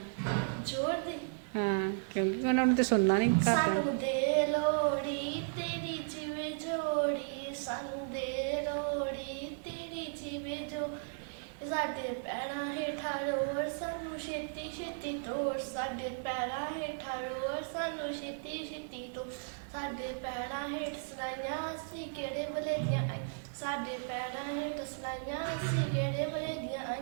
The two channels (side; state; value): left; silent; 54 dB below the other